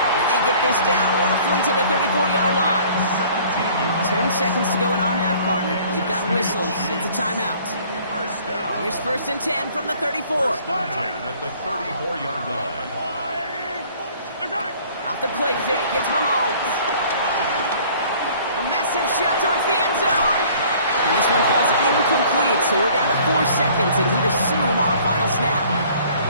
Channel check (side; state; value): both; inverted; correlation -0.54